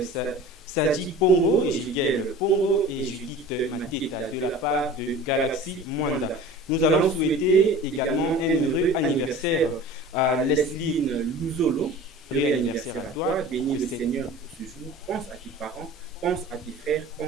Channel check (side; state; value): both; normal; correlation 0.40